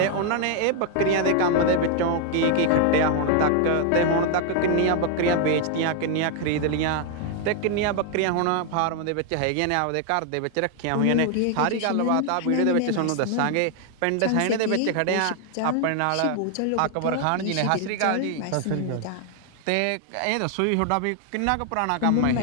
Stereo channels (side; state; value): both; different; correlation 0.00